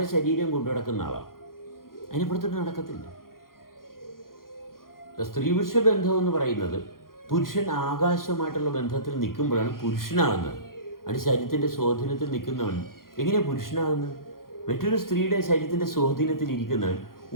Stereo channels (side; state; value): right; late; 0.91 ms